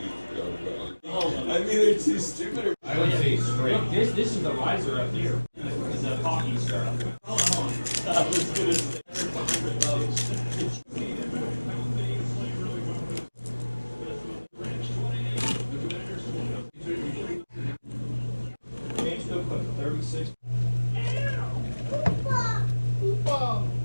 mean, they're too stupid. I would say straight. This is the riser up here. This is the hockey star. Hold on. I was gonna say. James still put 36.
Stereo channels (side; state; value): both; inverted; correlation -1.00